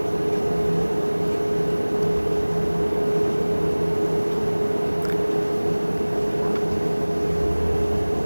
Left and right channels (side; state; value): both; inverted; correlation -1.00